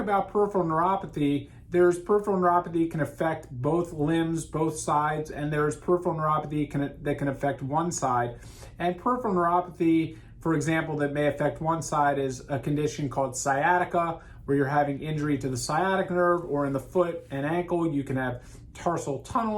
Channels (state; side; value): identical; both; correlation 1.00